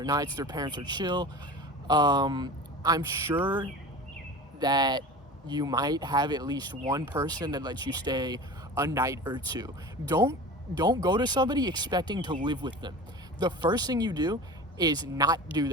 nights, their parents are chill, I'm sure that you might have at least one person that lets you stay a night or two. Don't go to somebody expecting to live with them. The first thing you do is not do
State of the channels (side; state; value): both; normal; correlation 0.35